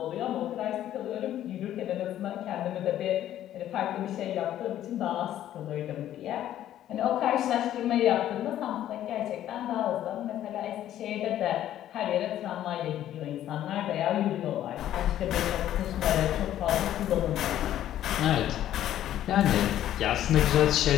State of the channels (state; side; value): quieter; right; 12.1 dB